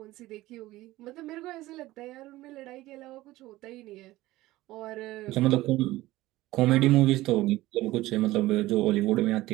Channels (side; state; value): left; quieter; 17.4 dB